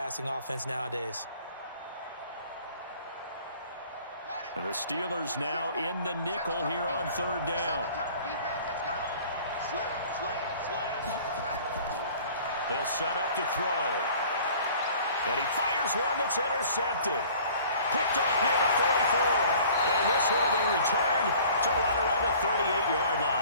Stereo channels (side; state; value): both; inverted; correlation -0.50